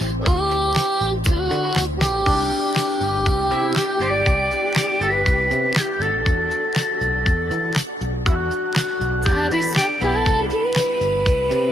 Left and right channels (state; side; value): normal; both; correlation 0.81